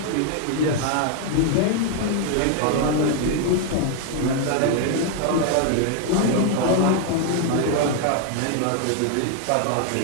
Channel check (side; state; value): both; different; correlation 0.00